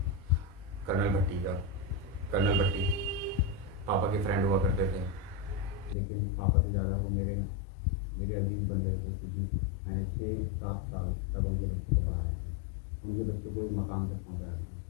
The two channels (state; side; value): drops out; right; at 6.0 s